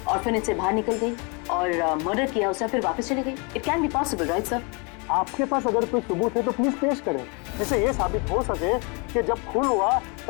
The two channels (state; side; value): quieter; right; 31.0 dB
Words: ऑर्फनेज से बाहर निकल गई और मर्डर किया उसने फिर वापस चली गई। It can be possible, right sir? आपके पास अगर कोई सबूत है तो प्लीज पेश करें, जिससे ये साबित हो सके कि जब खून हुआ